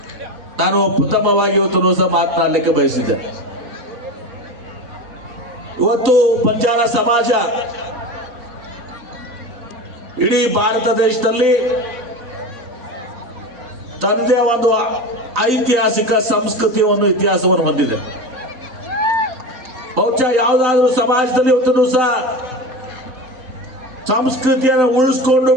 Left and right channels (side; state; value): left; late; 3.9 ms